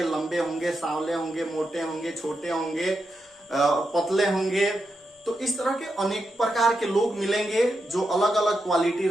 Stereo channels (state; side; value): normal; both; correlation 0.86